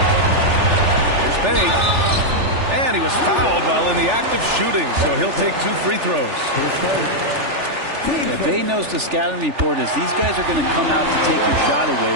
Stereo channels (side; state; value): left; late; 3.4 ms